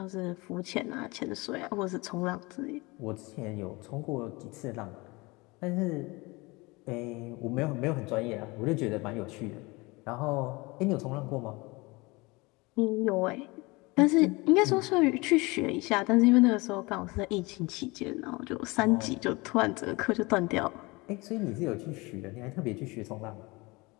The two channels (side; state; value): right; quieter; 24.4 dB